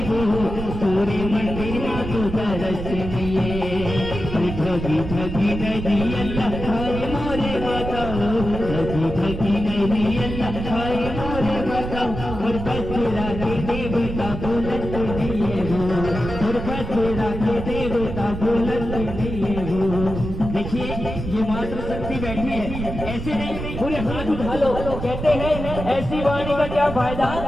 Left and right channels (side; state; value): right; noise; rumble, 7 dB below the sound